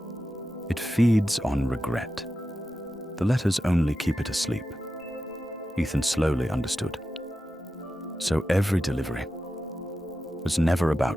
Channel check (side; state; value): both; normal; correlation 0.91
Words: It feeds on regret. The letters only keep it asleep." Ethan slowly understood. So every delivery was never